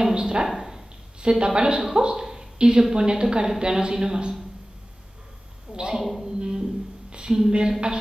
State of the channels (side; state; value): both; normal; correlation 0.97